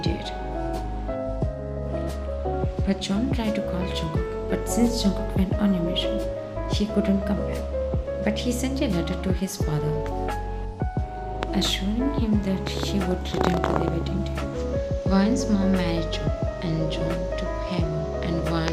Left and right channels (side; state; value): both; identical; correlation 1.00